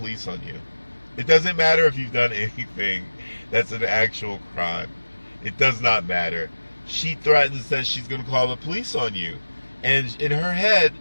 on you. It doesn't matter if you've done anything that's an actual crime. It does not matter. She threatens that she's going to call the police on you. And in her head,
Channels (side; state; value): both; inverted; correlation -1.00